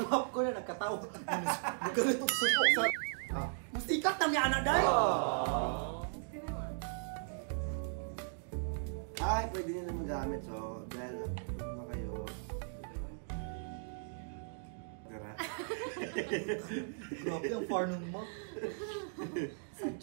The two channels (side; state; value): left; silent; digital silence